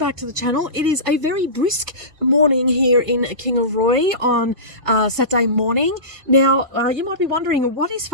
to the channel. It is a very brisk morning here in Kingaroy on Saturday morning. Now, you might be wondering, what is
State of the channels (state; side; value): late; left; 2.5 ms